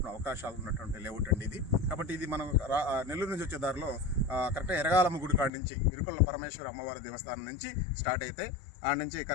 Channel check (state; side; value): drops out; right; at 5.5 s